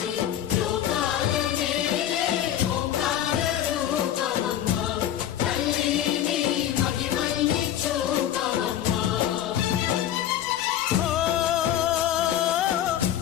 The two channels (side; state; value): right; quieter; 11.2 dB